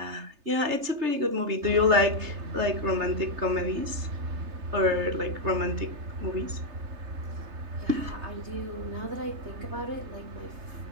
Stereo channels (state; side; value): late; left; 3.3 ms